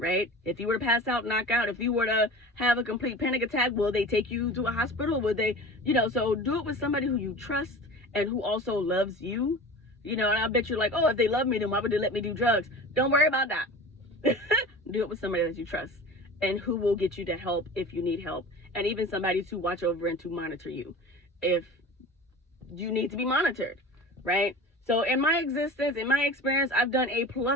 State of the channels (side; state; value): both; normal; correlation 0.36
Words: If you were to pass out, knock out, if you were to have a complete panic attack, will they take you to a hospital? Will they, you know, so do it with somebody who you trust and who also loves you, you know. And I bet you're like, oh, if they love me, then why would they let me do drugs? Don't worry about that. Do it with somebody that you trust and who will get you to help if you need help, and even somebody to watch over and to monitor you if you need to be monitored, right? So in my existence, in my experience, I've done a